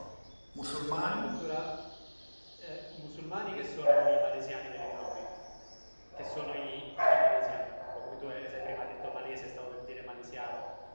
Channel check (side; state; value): both; inverted; correlation -1.00